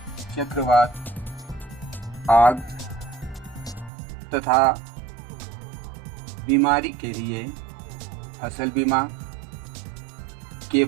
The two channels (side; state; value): left; drops out; at 3.9 s